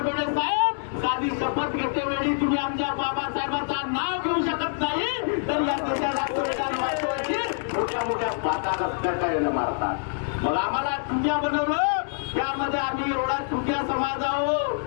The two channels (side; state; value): right; silent; digital silence